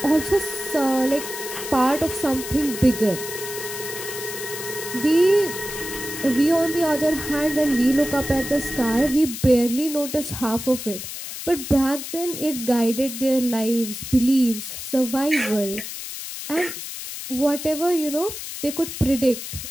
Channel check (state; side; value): noise; left; hiss, 8 dB below the sound